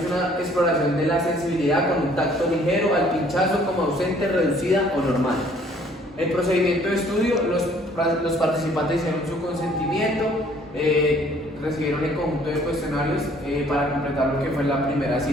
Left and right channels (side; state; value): both; normal; correlation 0.59